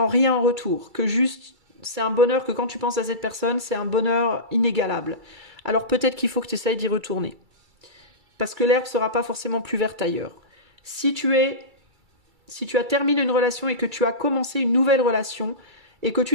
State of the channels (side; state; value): left; late; 2.3 ms